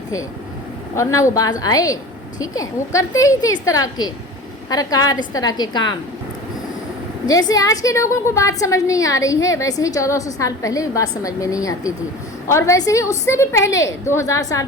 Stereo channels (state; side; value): normal; both; correlation 0.36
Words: تھے، اور نہ وہ باز آئے، ٹھیک ہے، وہ کرتے ہی تھے اس طرح کے حرکات، اس طرح کے کام۔ جیسے آج کے لوگوں کو بات سمجھ نہیں آ رہی ہے، ویسے ہی 1400 سال پہلے بھی بات سمجھ میں نہیں آتی تھی، اور ویسے ہی اس سے بھی پہلے 2000 سال